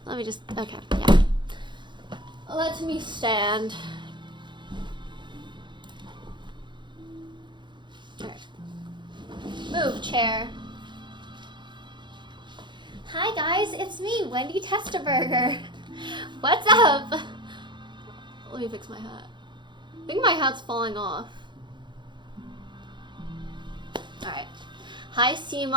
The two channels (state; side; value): late; left; 0.23 ms